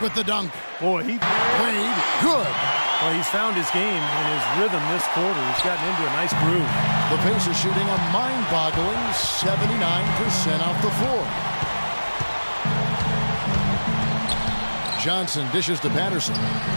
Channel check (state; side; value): inverted; both; correlation -1.00